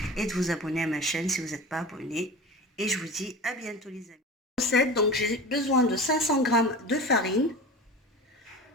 et de vous abonner à ma chaîne si vous n'êtes pas abonné. Et je vous dis à bientôt les amis. Recette, donc j'ai besoin de 500 g de farine.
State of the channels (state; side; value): normal; both; correlation 0.33